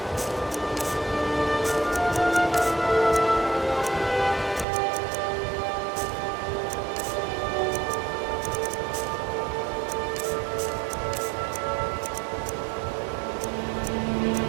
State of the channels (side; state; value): left; drops out; at 4.7 s